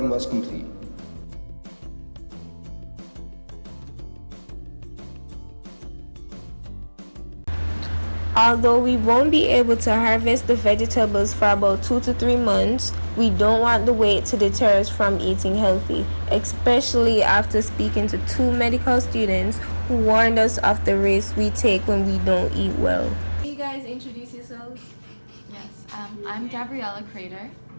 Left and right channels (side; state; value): both; inverted; correlation -1.00